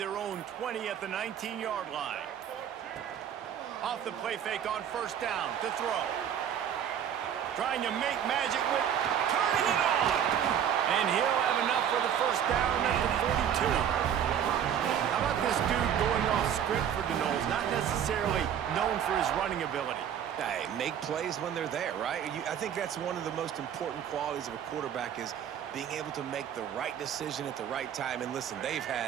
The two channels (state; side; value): quieter; left; 9.1 dB